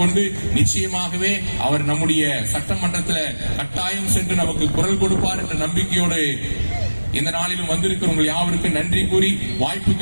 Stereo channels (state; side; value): inverted; both; correlation -1.00